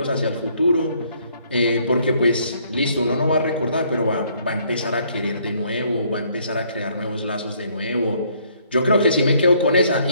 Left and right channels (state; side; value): inverted; both; correlation -0.66